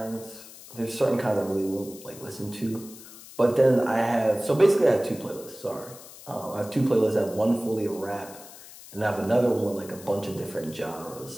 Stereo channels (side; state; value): left; noise; hiss, 17 dB below the sound